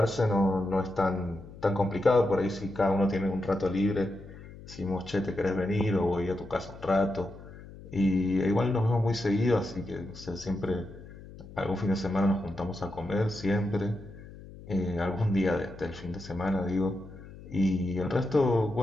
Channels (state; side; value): noise; left; hum, 17 dB below the sound